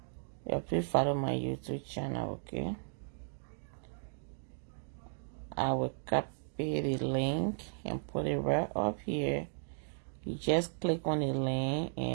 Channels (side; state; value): left; silent; digital silence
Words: Yeah, please follow my YouTube channel, okay? I will copy the link and put it right up here. You just click on the link